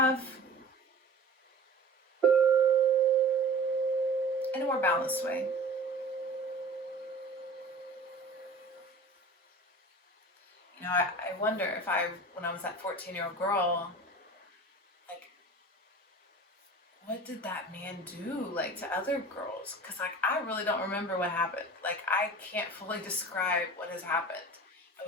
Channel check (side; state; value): both; normal; correlation 0.40